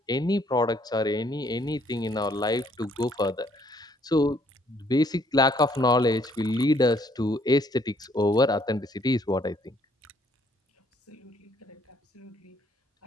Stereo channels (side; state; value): both; normal; correlation 0.65